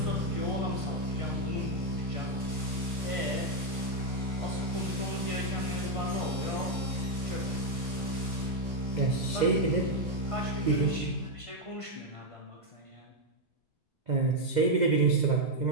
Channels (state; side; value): normal; both; correlation 0.01